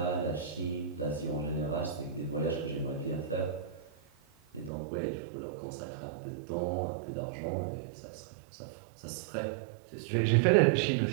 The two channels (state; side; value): drops out; left; at 4.7 s